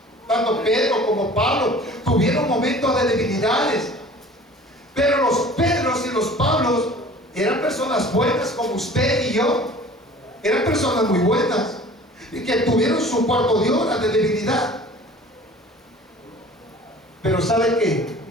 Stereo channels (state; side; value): normal; both; correlation 0.46